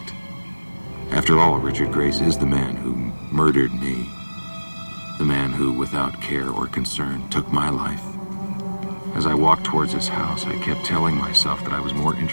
After all, Richard Grace is the man who murdered me. The man who, without care or concern, took my life. As I walked towards his house, I kept telling myself that I was more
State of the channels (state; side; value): inverted; both; correlation -1.00